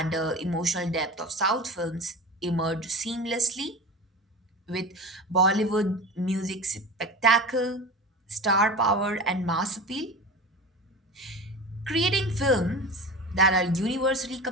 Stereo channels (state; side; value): normal; both; correlation 0.31